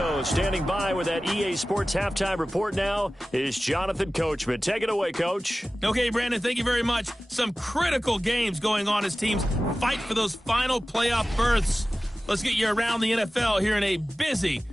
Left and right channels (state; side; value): normal; both; correlation 0.96